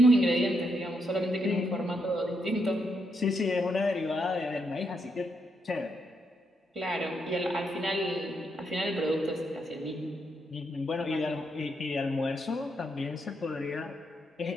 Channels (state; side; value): normal; both; correlation 0.79